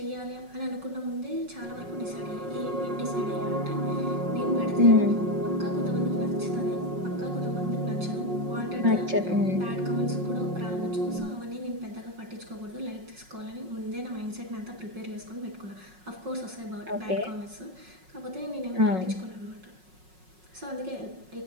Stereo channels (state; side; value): late; left; 5.4 ms